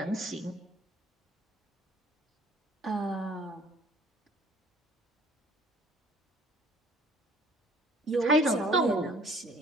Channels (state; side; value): normal; both; correlation 0.55